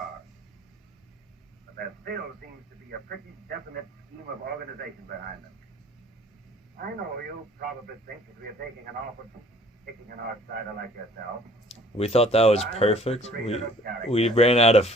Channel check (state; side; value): normal; both; correlation 0.55